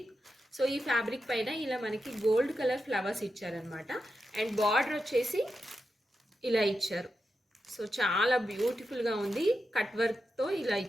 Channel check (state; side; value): normal; both; correlation 0.88